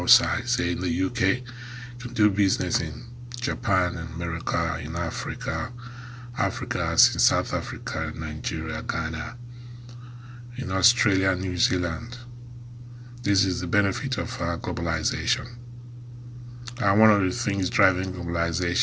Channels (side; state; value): both; identical; correlation 1.00